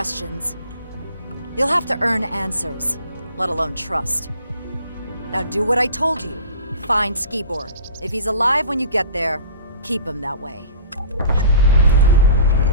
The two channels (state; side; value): inverted; both; correlation -0.42